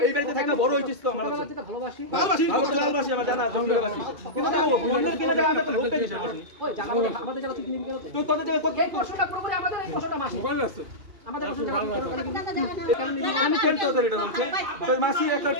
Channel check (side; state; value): left; late; 2.4 ms